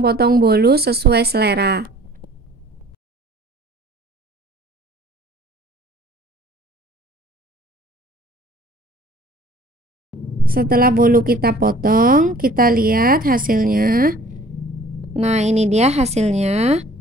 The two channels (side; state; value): both; normal; correlation 0.51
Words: bolu sesuai selera. Setelah bolu kita potong, kita lihat hasilnya. Nah, ini dia hasilnya,